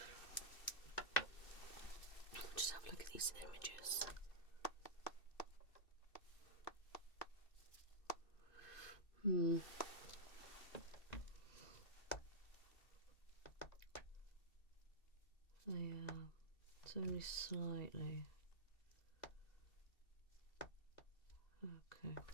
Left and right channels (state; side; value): late; right; 2.7 ms